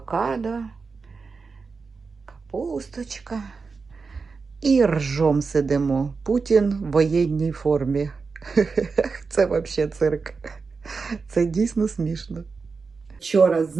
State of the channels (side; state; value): left; quieter; 4.7 dB